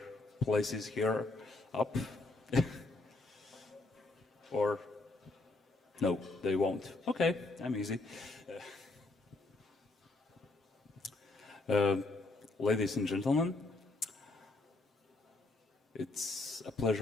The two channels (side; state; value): right; quieter; 3.1 dB